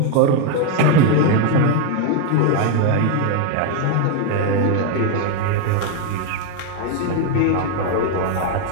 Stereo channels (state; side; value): different; both; correlation 0.01